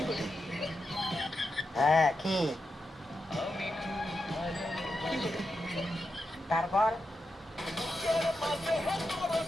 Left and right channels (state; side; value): normal; both; correlation 0.87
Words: হ্যাঁ কি তারপর